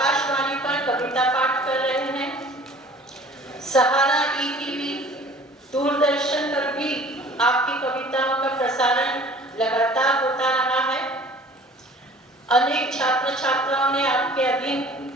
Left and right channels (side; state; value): both; normal; correlation 0.48